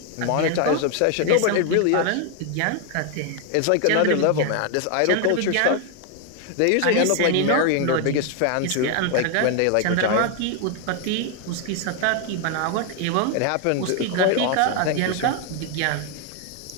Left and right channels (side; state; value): both; different; correlation 0.01